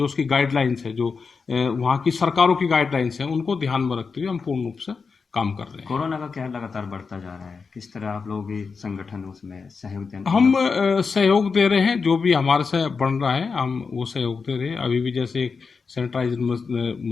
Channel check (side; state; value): right; quieter; 5.0 dB